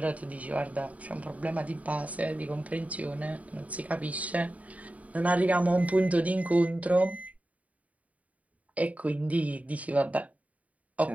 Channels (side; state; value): left; late; 0.069 ms